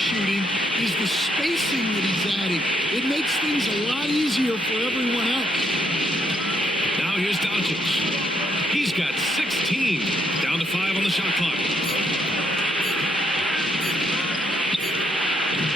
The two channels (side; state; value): both; normal; correlation 0.74